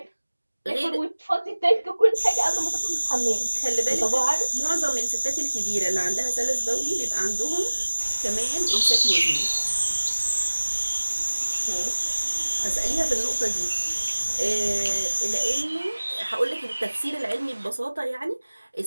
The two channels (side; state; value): both; inverted; correlation -1.00